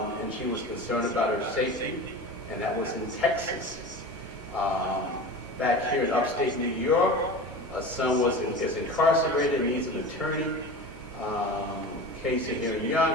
she was concerned about her safety, and that was in Texas. Back here in upstate New York, a son is incarcerated and needs an attorney. Case here in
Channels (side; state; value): both; normal; correlation 0.32